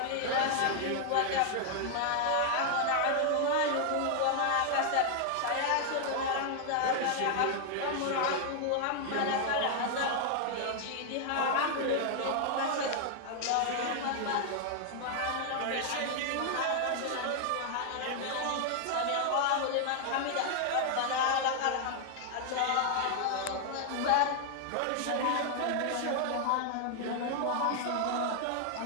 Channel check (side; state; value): both; different; correlation 0.00